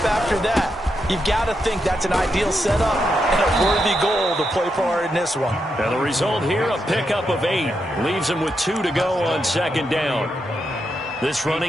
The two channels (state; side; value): normal; both; correlation 0.83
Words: after that. You've got to think that's an ideal setup and a worthy goal to play for in this one. And the result here, a pickup of 8. Leaves them with 2 to go on 2nd down. This